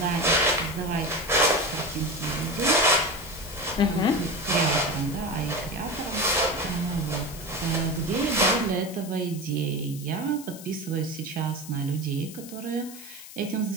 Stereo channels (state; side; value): noise; left; hiss, 15 dB below the sound